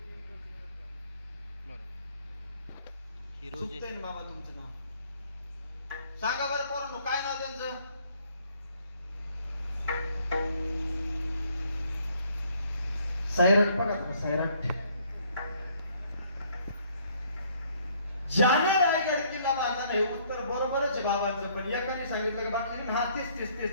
चुकतंय बाबा तुमचं नाव सांगा बरं पोरांनो, काय नाव त्यांचं? सैराट. बघा सैराट. ज्याने रायगड किल्ला बांधला नाही. उत्तर बरोबरच आहे बाबांचं, पण एकाने सांगितलं की बाकी हा तीस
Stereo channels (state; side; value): inverted; both; correlation -0.64